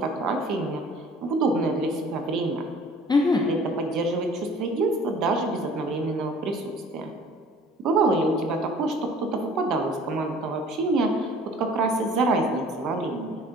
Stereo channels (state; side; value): normal; both; correlation 0.50